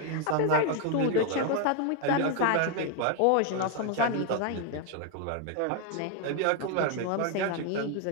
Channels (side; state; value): both; different; correlation 0.01